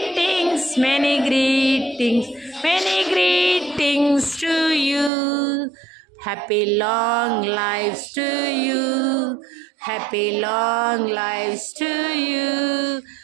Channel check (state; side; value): drops out; left; at 5.1 s